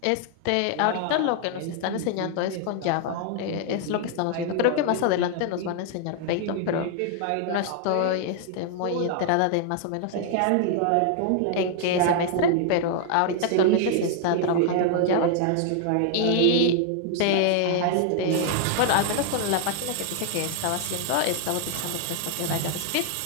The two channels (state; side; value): different; both; correlation 0.00